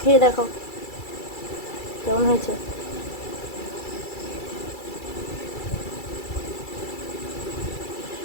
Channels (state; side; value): late; right; 2.3 ms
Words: খেয়ে দেখো কেমন হয়েছে।